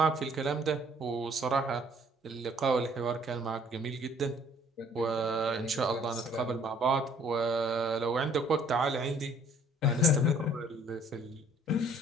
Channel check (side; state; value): both; normal; correlation 0.60